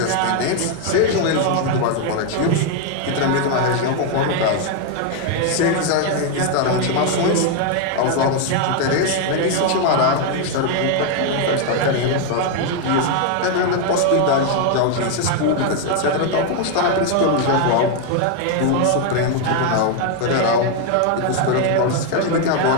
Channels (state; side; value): different; both; correlation 0.01